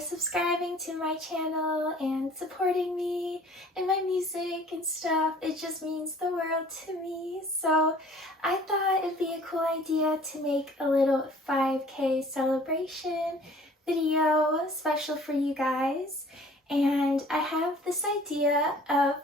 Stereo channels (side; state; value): both; normal; correlation 0.51